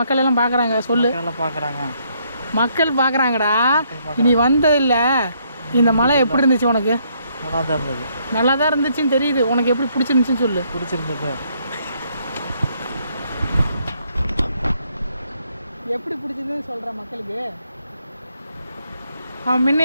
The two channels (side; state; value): both; inverted; correlation -0.71